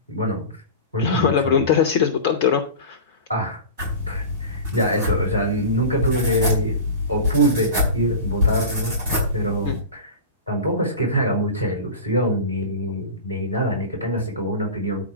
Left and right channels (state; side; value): inverted; both; correlation -0.31